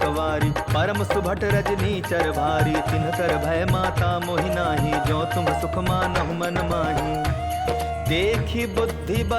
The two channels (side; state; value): both; identical; correlation 1.00